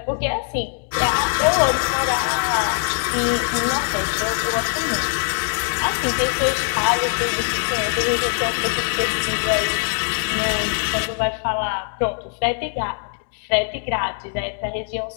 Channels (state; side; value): silent; right; 63 dB below the other